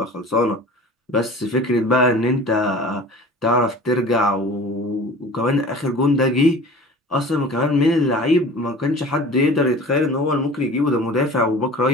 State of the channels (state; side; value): normal; both; correlation 0.41